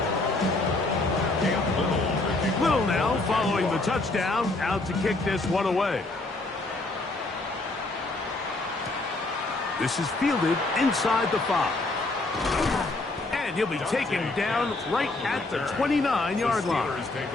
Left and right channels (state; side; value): quieter; right; 3.0 dB